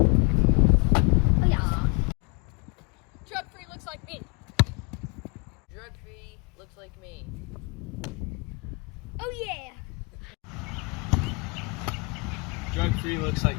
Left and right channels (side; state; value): right; quieter; 31.2 dB